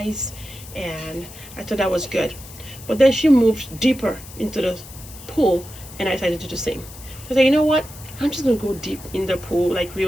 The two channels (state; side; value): noise; left; hiss, 17 dB below the sound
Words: and I thought that was good. But then she moved deeper into the pool, and I decided to do the same. So I said, you know what? I'm just gonna go deep in the pool, like